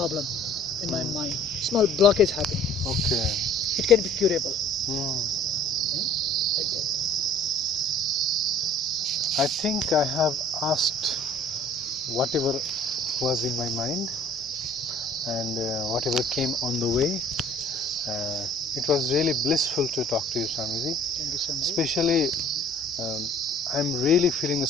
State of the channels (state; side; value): normal; both; correlation 0.52